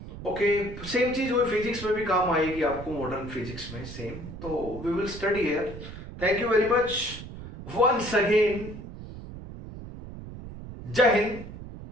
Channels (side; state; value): right; noise; rumble, 12 dB below the sound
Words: ओके, सेम चीज वो फिजिक्स में भी काम आएगी आपको, मॉडर्न फिजिक्स में सेम. तो we will study here. Thank you very much once again. जय हिंद,